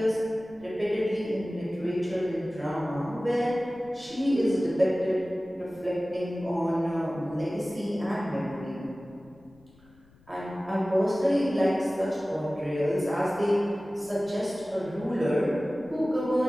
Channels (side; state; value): left; noise; rumble, 28 dB below the sound